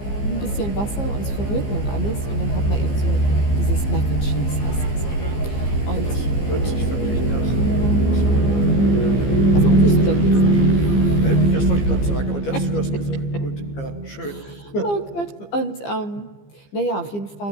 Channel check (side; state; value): right; late; 15 ms